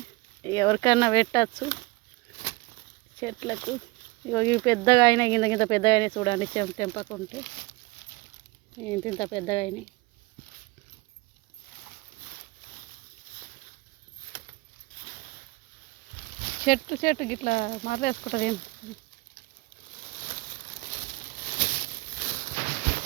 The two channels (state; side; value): quieter; left; 23.3 dB